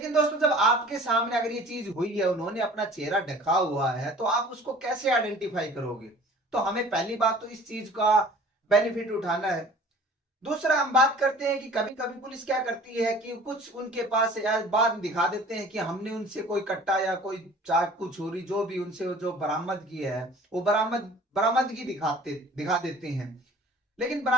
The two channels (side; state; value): both; normal; correlation 0.47